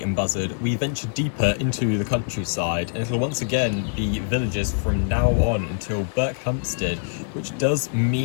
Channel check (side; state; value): right; silent; digital silence